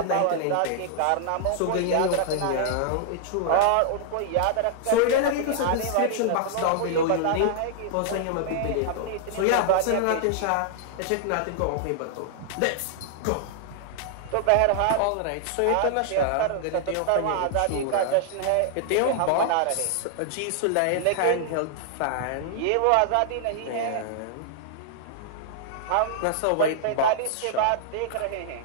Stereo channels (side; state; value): both; different; correlation -0.01